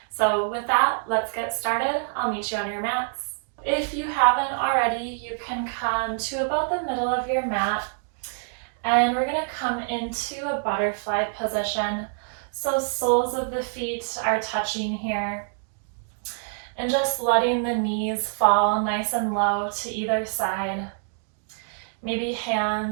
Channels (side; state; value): left; silent; 61 dB below the other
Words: So with that, let's get started. I'll meet you on your mats. If you haven't already, you can come to about the middle of your mat and we're gonna come into a butterfly position. So soles of the feet are touching here and just letting the knees fall nice and low to either side. Maybe